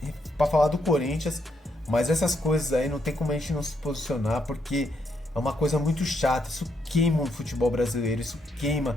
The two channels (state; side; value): normal; both; correlation 0.77